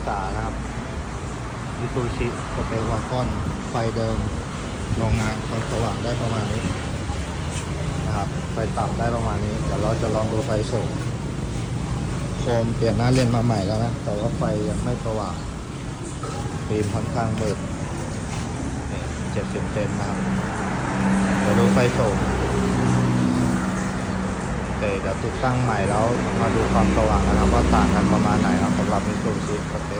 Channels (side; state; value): both; identical; correlation 1.00